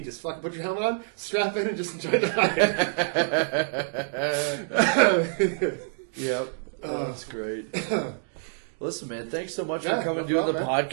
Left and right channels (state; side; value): silent; left; digital silence